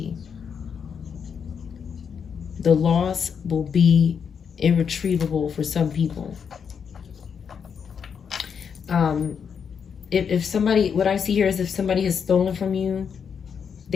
The loss will be irretrievable for some people. If somebody, what I see here is if somebody has stolen from you,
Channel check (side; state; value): right; quieter; 6.9 dB